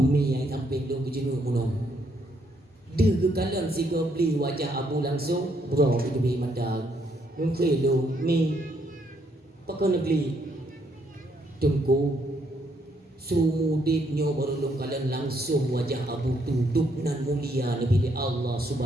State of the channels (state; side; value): normal; both; correlation 0.72